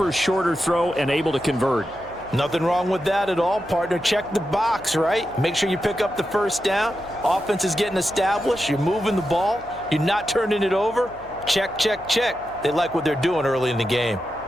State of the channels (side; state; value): left; noise; hum, 23 dB below the sound